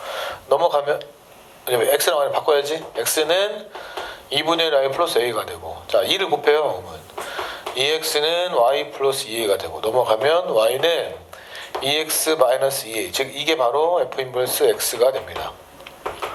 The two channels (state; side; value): identical; both; correlation 1.00